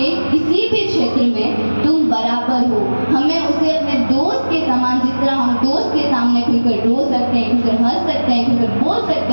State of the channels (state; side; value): inverted; both; correlation -1.00